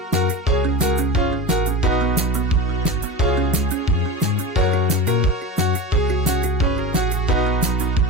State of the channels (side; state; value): both; normal; correlation 0.26